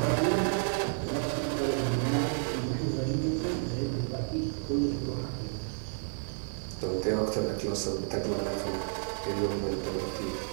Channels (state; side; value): silent; left; digital silence